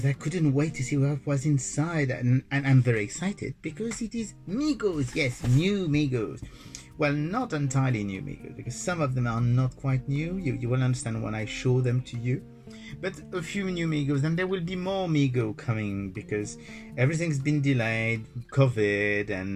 I couldn't wait to see what was inside, and I'm very excited because it is Megos. Yes, new Megos. Well, not entirely new Megos because some of them are not quite new. You will understand when I show them to you. But a few new Megos, and there will be more Mego coming because everything's been delayed, COVID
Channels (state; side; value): identical; both; correlation 1.00